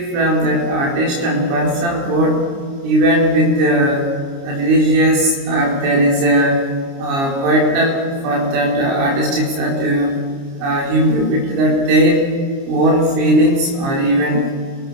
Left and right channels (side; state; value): left; late; 29 ms